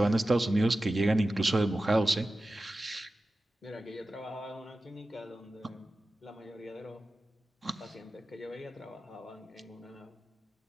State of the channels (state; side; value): normal; both; correlation 0.94